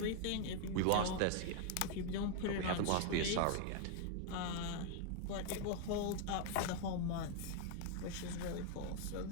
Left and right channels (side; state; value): both; different; correlation 0.00